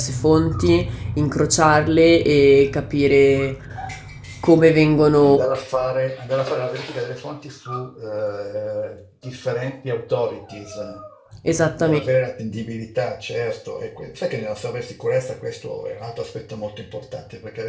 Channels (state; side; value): identical; both; correlation 1.00